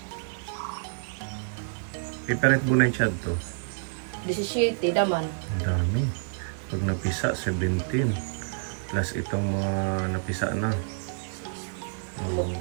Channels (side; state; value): left; silent; digital silence